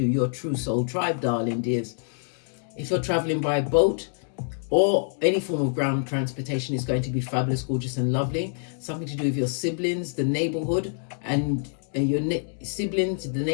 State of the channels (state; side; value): silent; right; digital silence